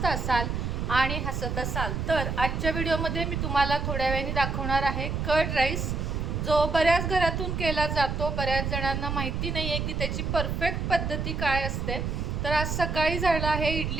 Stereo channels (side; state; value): right; noise; rumble, 2 dB below the sound